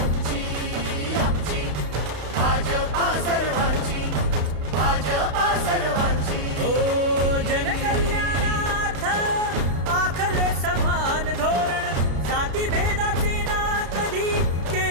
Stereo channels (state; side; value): late; left; 33 ms